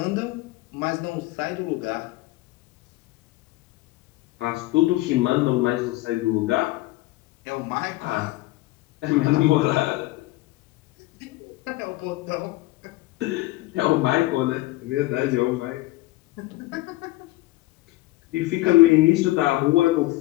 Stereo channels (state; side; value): quieter; right; 19.1 dB